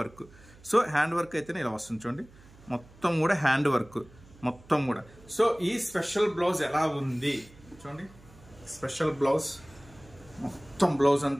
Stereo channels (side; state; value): right; noise; hum, 24 dB below the sound